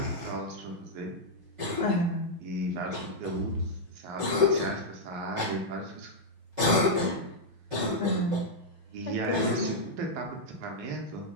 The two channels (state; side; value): late; left; 5.5 ms